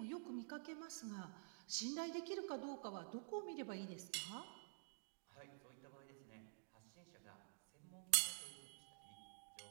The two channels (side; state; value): left; silent; digital silence